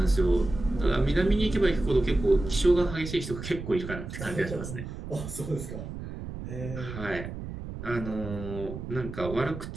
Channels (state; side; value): noise; right; rumble, 9 dB below the sound